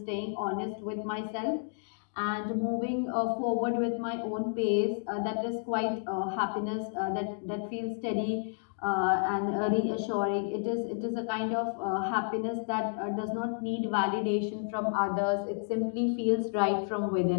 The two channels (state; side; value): silent; right; digital silence